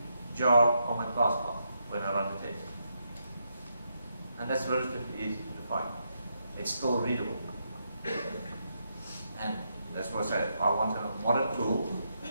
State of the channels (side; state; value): both; inverted; correlation -0.80